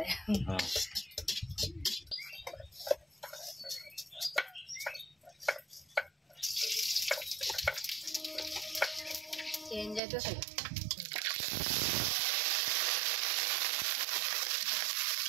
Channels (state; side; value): drops out; left; at 10.0 s